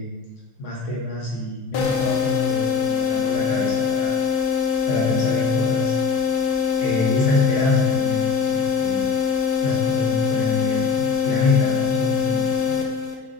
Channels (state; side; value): quieter; right; 5.3 dB